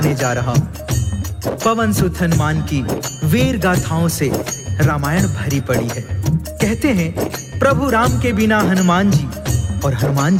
जा रहा हूँ। पवन सुत हनुमान की वीर गाथाओं से रामायण भरी पड़ी है। कहते हैं प्रभु राम के बिना हनुमान जी और हनुमान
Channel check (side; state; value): both; identical; correlation 1.00